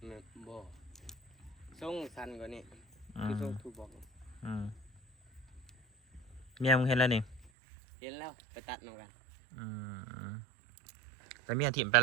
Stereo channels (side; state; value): left; drops out; at 7.5 s